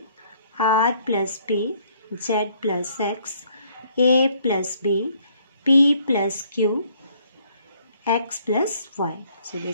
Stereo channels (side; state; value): both; inverted; correlation -0.64